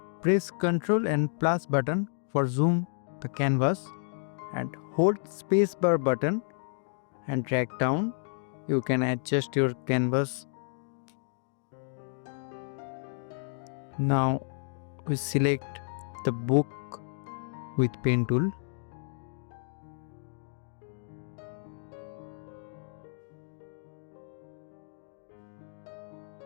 press Ctrl and plus button for zoom the canvas and hold spacebar button and drag down. You can adjust your canvas. Now we select the book with pen tool.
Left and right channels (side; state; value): right; silent; digital silence